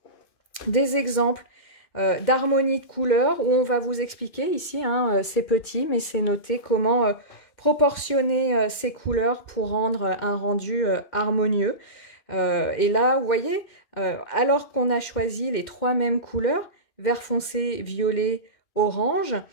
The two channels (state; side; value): late; right; 2.1 ms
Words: des exemples d'harmonie de couleurs, où on va vous expliquer ici, hein, c'est petit, mais c'est noté comment proportionner ces couleurs pour rendre un rendu harmonieux. Et là, vous voyez, alors qu'on a choisi les trois mêmes couleurs, vert foncé, violet, orange,